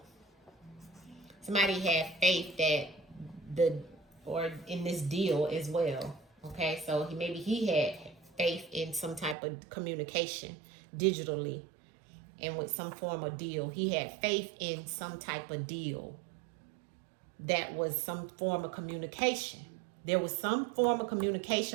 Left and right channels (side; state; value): left; drops out; at 9.3 s